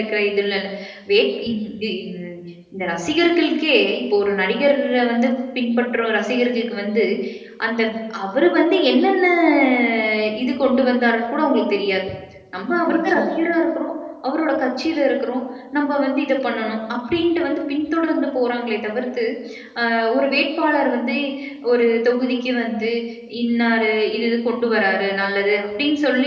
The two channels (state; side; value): identical; both; correlation 1.00